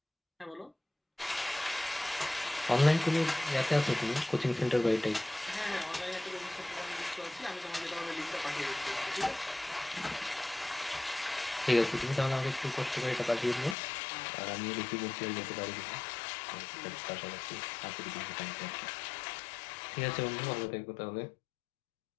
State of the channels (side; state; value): right; drops out; at 13.8 s